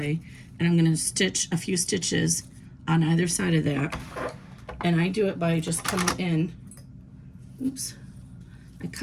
and I'm gonna stitch a few stitches on either side of that, And I do it by just coming in, oops, I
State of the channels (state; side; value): identical; both; correlation 1.00